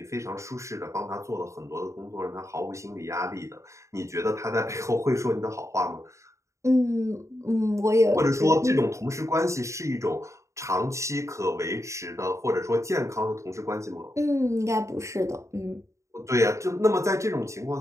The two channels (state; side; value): late; left; 0.14 ms